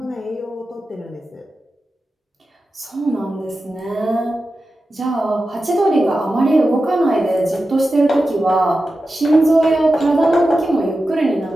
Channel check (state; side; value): normal; both; correlation 0.92